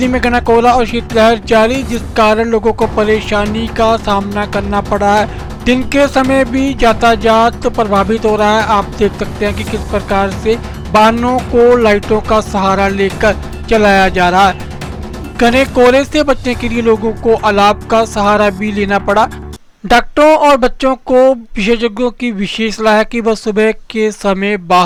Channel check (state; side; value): identical; both; correlation 1.00